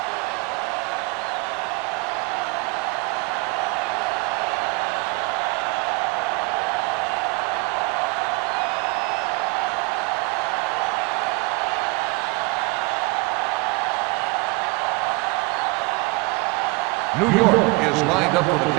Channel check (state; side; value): quieter; left; 25.8 dB